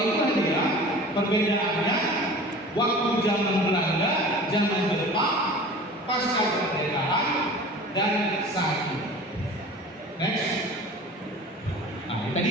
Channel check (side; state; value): both; normal; correlation 0.40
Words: dia perbedaannya waktu zaman Belanda, zaman Jepang, pasca kemerdekaan, dan saat ini. Next. Nah,